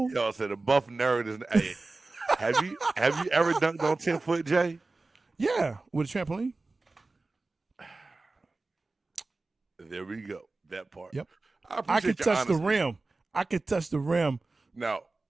Y'all said a buff nerd is. Hey, have you ever dunked on 10 foot, Jay? Yeah, with a trampoline. There we go. That part. Yep. I could touch the rim. I could touch the rim. Now,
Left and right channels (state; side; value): quieter; left; 3.4 dB